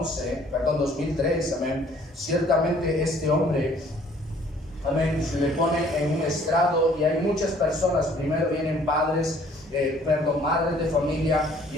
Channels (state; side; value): normal; both; correlation 0.58